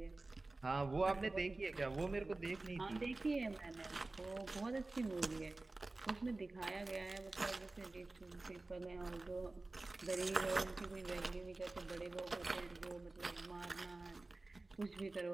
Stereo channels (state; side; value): quieter; left; 3.1 dB